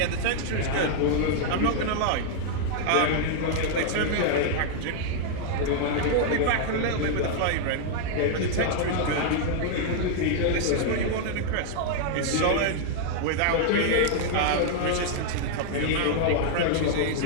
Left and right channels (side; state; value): both; different; correlation -0.01